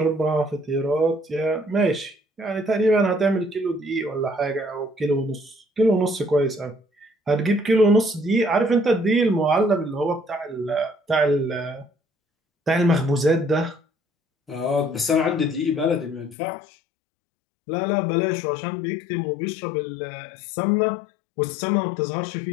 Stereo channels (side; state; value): right; drops out; at 16.4 s